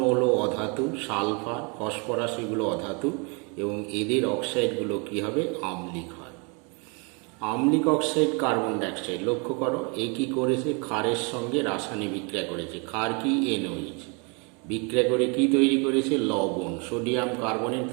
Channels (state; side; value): quieter; left; 33.0 dB